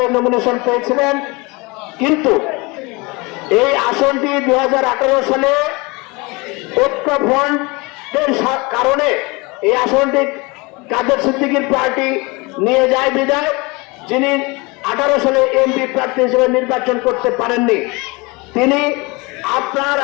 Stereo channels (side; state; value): right; quieter; 26.0 dB